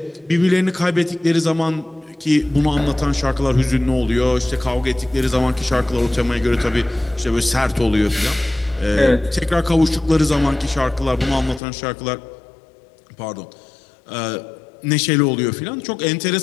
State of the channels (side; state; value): right; drops out; at 11.6 s